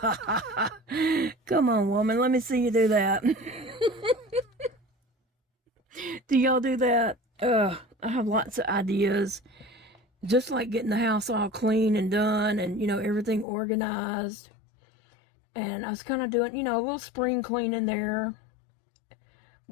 ha ha, come on, woman, let me see you do that. Do y'all do that? I have lots of ideas. Just like getting the house all clean and done and, you know, everything organized. And I was kind of doing, you know, a little spring cleaning there.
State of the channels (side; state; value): right; drops out; at 13.5 s